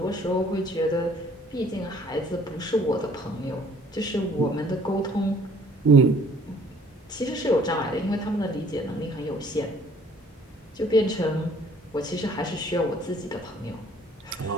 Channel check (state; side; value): normal; both; correlation 0.57